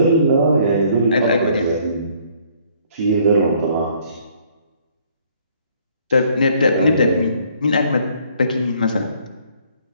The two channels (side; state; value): both; inverted; correlation -0.62